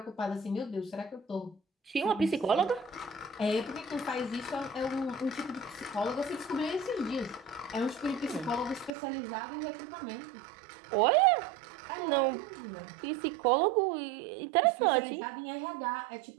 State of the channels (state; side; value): drops out; left; at 8.9 s